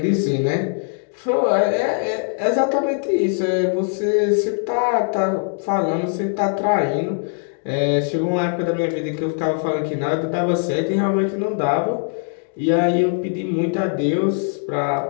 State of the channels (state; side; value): silent; right; 58 dB below the other